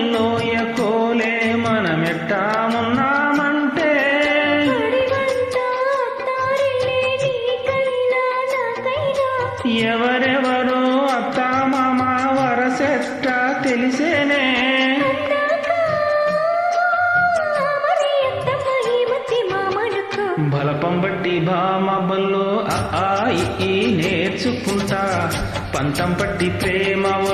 కోలే మనమెట్టా ఉన్నామంటే ఎవరెవరో అత్తా మామ వరసెట్టా తెలిసేనే బలపం బట్టి భామ బల్లో ఈ నేర్చుకుంటా పంతం పట్టి ప్రేమ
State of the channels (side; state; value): both; identical; correlation 1.00